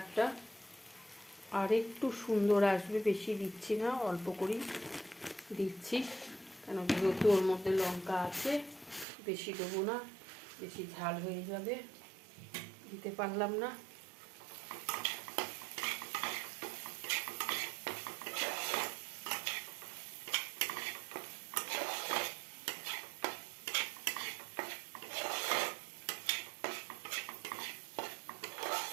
আর একটু সুন্দর আসবে। বেশি দিচ্ছি না, অল্প করেই দিচ্ছি, কেন যেহেতু ওর মধ্যে লঙ্কা আছে, বেশি দেবো না, বেশি ঝাল হয়ে যাবে, দিতে পারলাম না।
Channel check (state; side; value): drops out; left; at 9.1 s